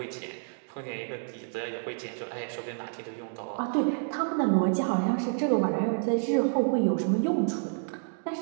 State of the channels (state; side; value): silent; left; digital silence